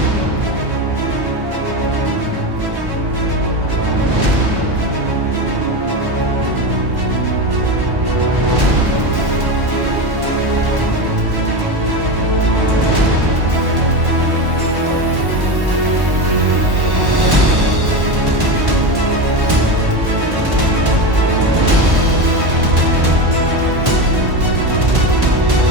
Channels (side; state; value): left; late; 1.1 ms